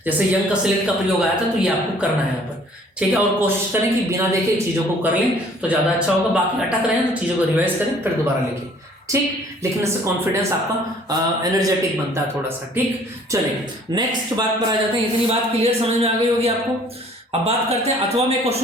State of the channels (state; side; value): normal; both; correlation 0.56